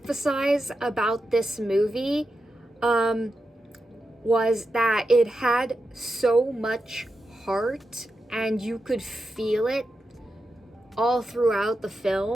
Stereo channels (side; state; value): both; normal; correlation 0.88